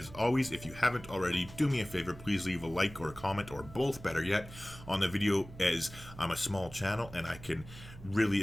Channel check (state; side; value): noise; right; hum, 16 dB below the sound